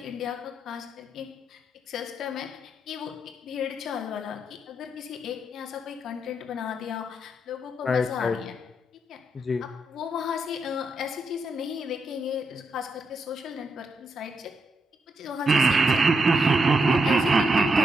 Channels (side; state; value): both; normal; correlation 0.81